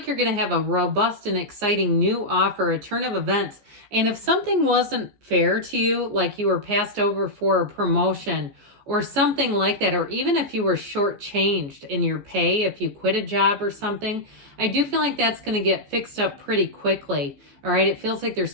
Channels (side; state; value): left; late; 14 ms